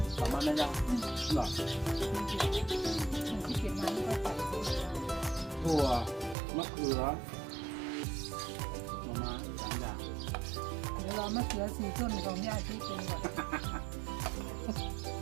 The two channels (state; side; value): drops out; left; at 6.4 s